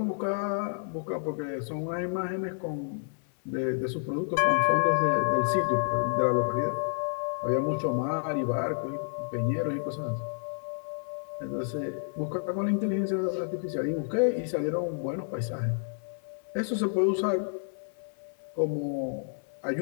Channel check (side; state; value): right; silent; 58 dB below the other